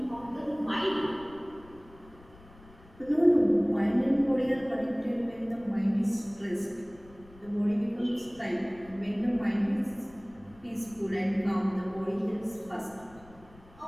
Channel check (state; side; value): noise; left; rumble, 24 dB below the sound